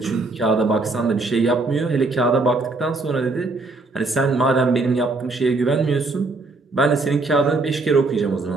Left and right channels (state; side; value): quieter; left; 3.4 dB